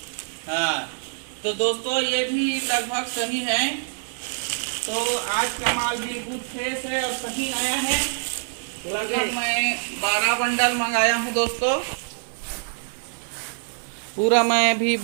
हाँ तो दोस्तों ये भी लगभग सही है। तो आज का माल बिल्कुल फ्रेश है और सही आया है। लगभग मैं 12 बंडल मंगाया हूँ दोस्तों। पूरा मैं भी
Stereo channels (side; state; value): left; silent; 56 dB below the other